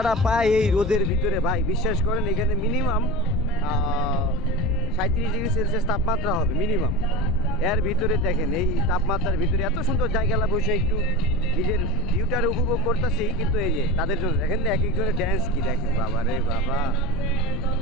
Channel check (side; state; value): left; noise; rumble, 4 dB below the sound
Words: পায় এই রোদের ভিতরে ভাই, বিশ্বাস করেন এখানে মিনিমাম 37°C তাপমাত্রা হবে মিনিমাম। এর ভিতরে দেখেন এই তাপমাত্রার ভিতরে এত সুন্দর জায়গাটা বসে একটু নিজের ভিউটার উপভোগ করতেছি, কিন্তু এই যে তাদের জন্য দেখেন না এক একজনের ড্যান্স কি দেখেন, বাবা রে বাবা,